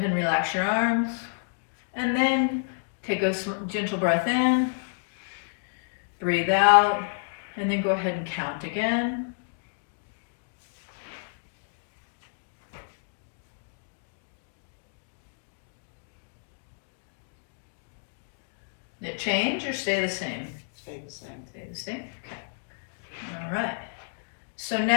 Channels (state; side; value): silent; right; digital silence